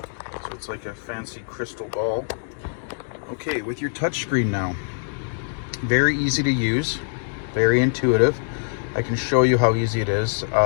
So it's like a fancy crystal ball. Okay, with your touchscreen now, very easy to use, very intuitive. I can show you how easy it is.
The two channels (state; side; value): silent; right; digital silence